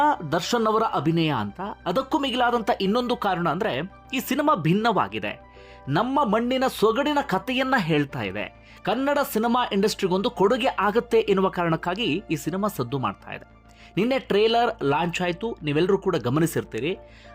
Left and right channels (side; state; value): both; identical; correlation 1.00